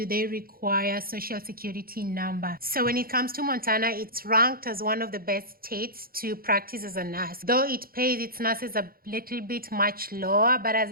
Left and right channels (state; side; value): late; left; 0.43 ms